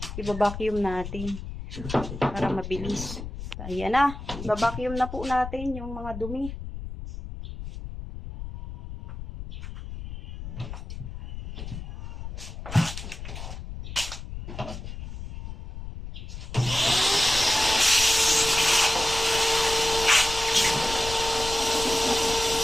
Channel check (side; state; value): left; noise; rumble, 9 dB below the sound